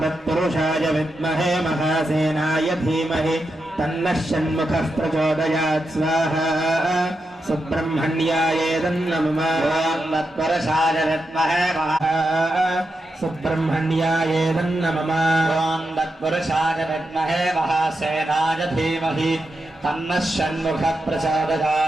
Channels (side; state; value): both; normal; correlation 0.87